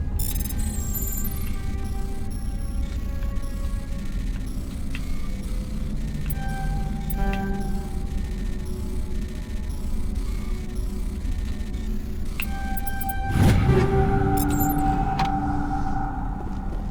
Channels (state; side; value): identical; both; correlation 1.00